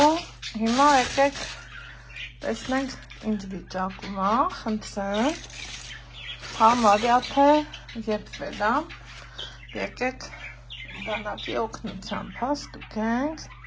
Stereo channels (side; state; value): both; identical; correlation 1.00